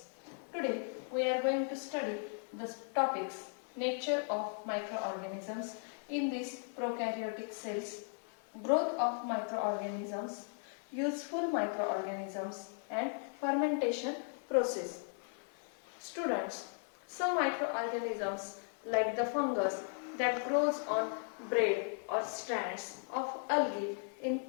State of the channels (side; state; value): right; silent; 53 dB below the other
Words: Today, we are going to study the topics nature of microorganisms in these prokaryotic cells, growth of microorganisms, useful microorganisms, and fermentation process. Students, some microorganisms like the fungus that grows on braid or strands of algae in